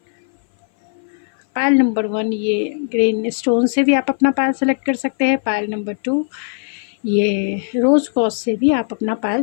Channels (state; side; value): silent; right; 58 dB below the other